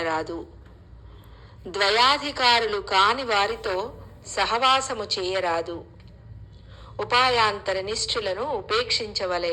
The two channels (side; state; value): both; identical; correlation 1.00